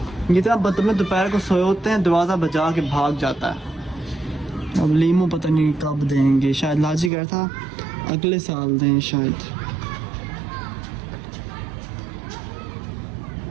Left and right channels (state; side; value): drops out; left; at 7.1 s